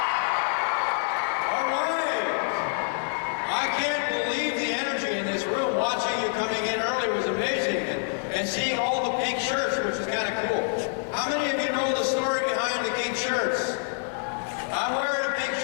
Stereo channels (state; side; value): silent; right; digital silence